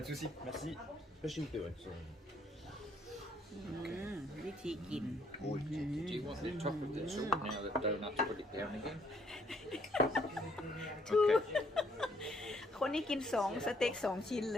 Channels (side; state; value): both; normal; correlation 0.67